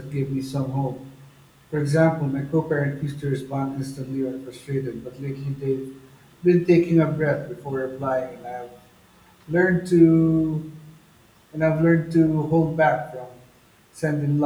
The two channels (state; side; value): identical; both; correlation 1.00